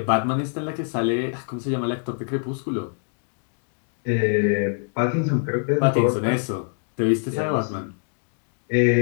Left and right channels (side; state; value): right; silent; 62 dB below the other